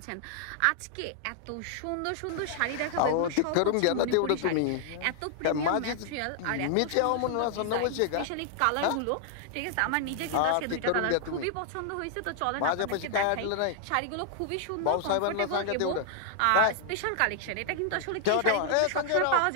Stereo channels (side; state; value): both; different; correlation 0.00